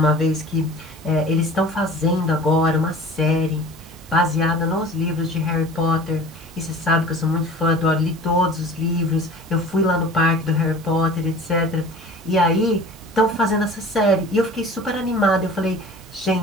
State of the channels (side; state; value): both; normal; correlation 0.43